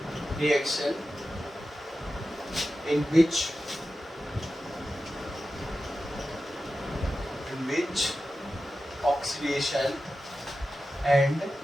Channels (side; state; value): both; normal; correlation 0.93